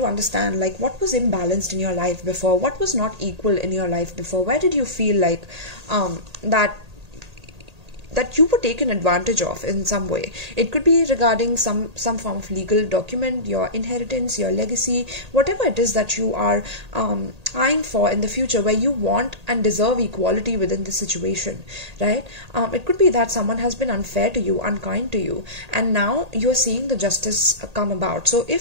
understand, like, what was imbalanced in your life before, what was not equal in your life before, where did you feel like that you were taken advantage of in some way. It could be regarding some form of legal document, your inheritance, your legacy, whatever it is that you are eyeing for in the future, where you want and deserve equality within the situation, right? It could be that someone has been unfair to you, unkind to you, and now you're seeing the justice come about. So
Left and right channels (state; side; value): late; left; 1.8 ms